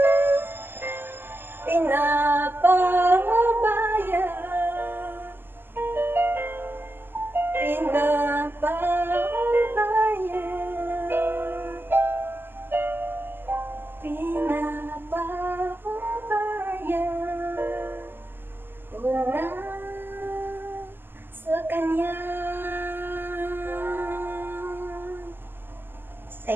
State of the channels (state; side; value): late; left; 0.098 ms